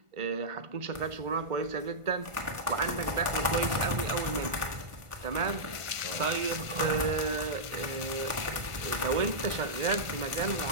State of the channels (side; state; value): left; late; 1.5 ms